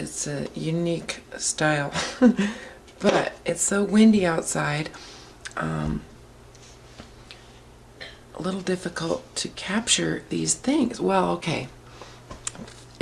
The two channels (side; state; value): both; identical; correlation 1.00